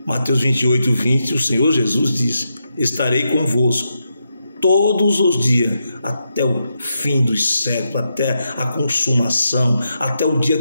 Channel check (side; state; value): both; inverted; correlation -0.84